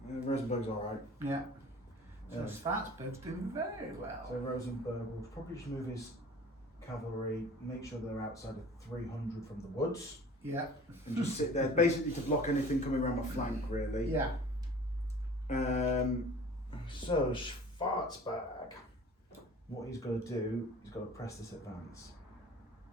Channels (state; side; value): normal; both; correlation 0.45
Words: Rosenberg's alright. Yeah. So Yeah. Schwarzberg's doing very well. So Rosenberg will probably just move his cavalry, make sure they're outside of 300 from the woods. Yeah. And just sit there, basically to block anything coming around my flank, really. Yeah. So Schwarzberg, what he's got to do, he's got to press this advance.